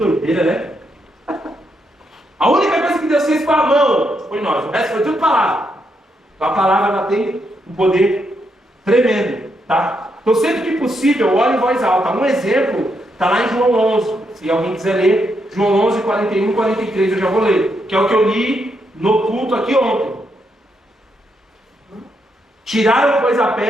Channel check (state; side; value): normal; both; correlation 0.79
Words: né? A única coisa que Deus fez com a mão foi nós, o resto foi tudo palavra. Então a palavra ela tem um poder tremendo, tá? Então, sempre que possível, ore em voz alta. Um exemplo está lá em João 11. Se alguém quiser ler, João 11, 41 e 43, eu já vou ler. Que é o que eu li no culto aqui ontem. Tiraram, pois, a